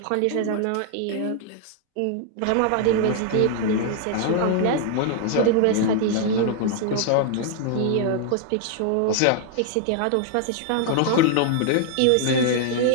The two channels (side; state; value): both; different; correlation 0.00